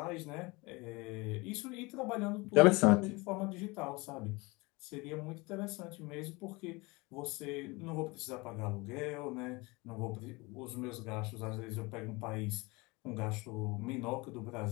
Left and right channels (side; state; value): right; quieter; 25.0 dB